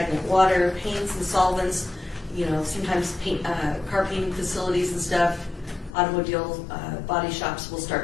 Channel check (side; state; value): right; drops out; at 6.0 s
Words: water, paints and solvents, you know, sometimes car painting facilities and stuff, automobile body shops will